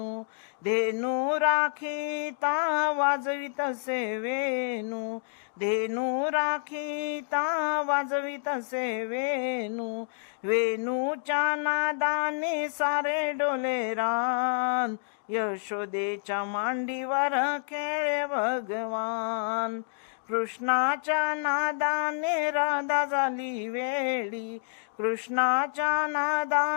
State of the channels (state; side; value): silent; right; digital silence